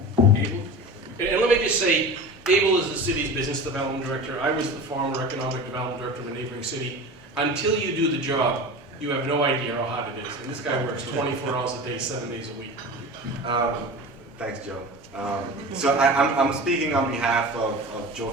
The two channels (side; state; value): both; normal; correlation 0.33